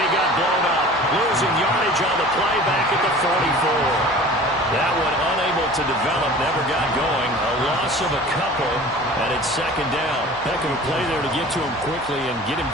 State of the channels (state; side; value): normal; both; correlation 0.42